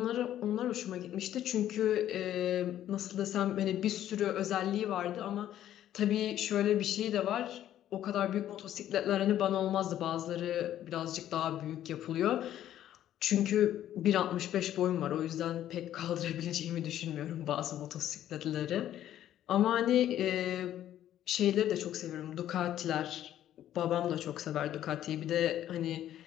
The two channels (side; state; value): right; quieter; 11.8 dB